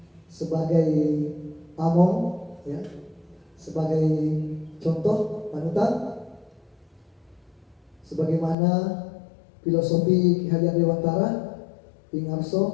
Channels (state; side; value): drops out; right; at 8.6 s